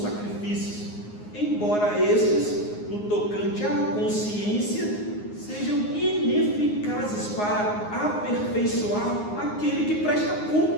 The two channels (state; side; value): late; right; 9.6 ms